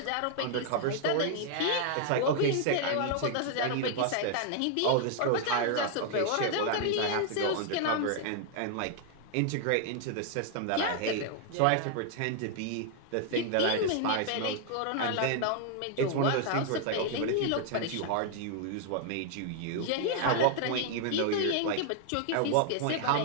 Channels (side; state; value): both; different; correlation 0.00